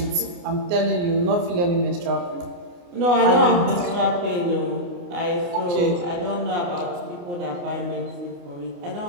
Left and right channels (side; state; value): left; late; 29 ms